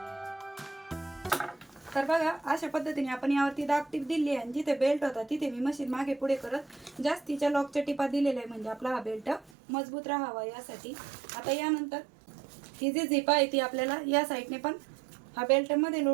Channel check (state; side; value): drops out; left; at 9.5 s